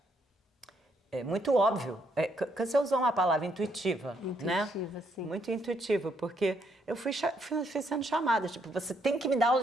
muito óbvio. Você usou uma palavra intuitiva, né? Intuitiva, sim. Muito intuitivo, porque eu fui sendo chamada, tipo, você tem que me dar aula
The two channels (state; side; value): normal; both; correlation 0.73